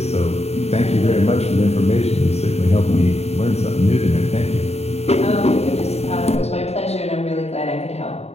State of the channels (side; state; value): right; late; 0.30 ms